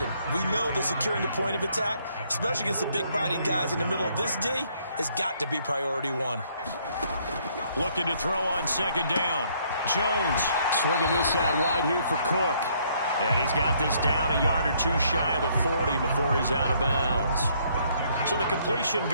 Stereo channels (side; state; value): both; inverted; correlation -0.67